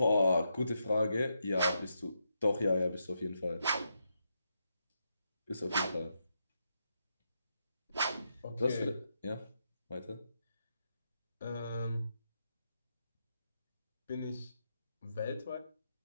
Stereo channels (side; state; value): both; inverted; correlation -0.83